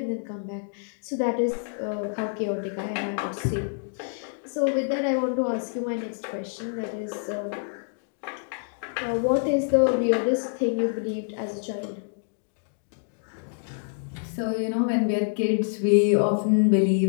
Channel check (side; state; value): right; silent; digital silence